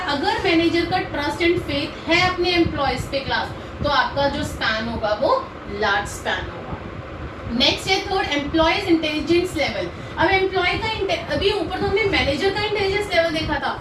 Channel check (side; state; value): both; identical; correlation 1.00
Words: अगर मैनेजर का ट्रस्ट एंड फेथ है अपने एम्प्लॉयज पे क्लास, तो आपका जो स्पैन होगा वो लार्ज स्पैन होगा। नेक्स्ट है थर्ड, एम्प्लॉयज इंटेलिजेंस लेवल। अब एम्प्लॉय का, अभी ऊपर तो हमने मैनेजर का इंटेलिजेंस लेवल देखा था,